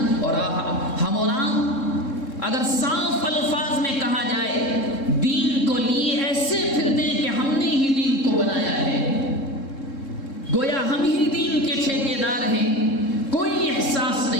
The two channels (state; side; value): late; right; 3.7 ms